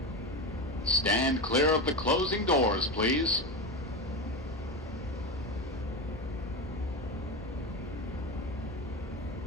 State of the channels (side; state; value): both; normal; correlation 0.19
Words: Stand clear of the closing doors, please.